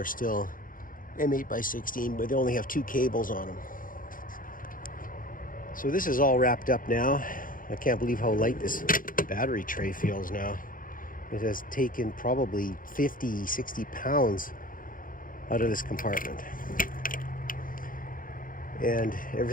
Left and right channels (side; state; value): right; late; 0.40 ms